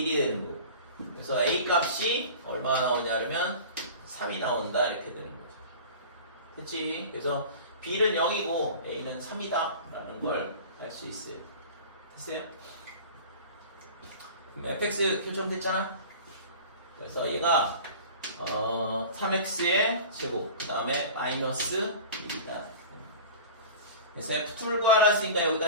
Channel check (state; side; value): inverted; both; correlation -0.38